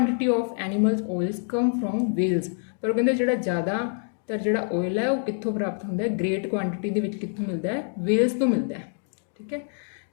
of animals oils come from whales, ਪਰ ਉਹ ਕਹਿੰਦੇ ਜਿਹੜਾ ਜ਼ਿਆਦਾਤਰ ਜਿਹੜਾ ਆਇਲ ਹੈ ਉਹ ਕਿੱਥੋਂ ਪ੍ਰਾਪਤ ਹੁੰਦਾ ਹੈ? ਗ੍ਰੇਟ ਕੁਆਂਟਿਟੀ ਦੇ ਵਿੱਚ ਕਿੱਥੋਂ ਮਿਲਦਾ ਹੈ? ਵੇਲਸ ਤੋਂ ਮਿਲਦਾ ਹੈ, ਠੀਕ ਹੈ।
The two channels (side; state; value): right; silent; 58 dB below the other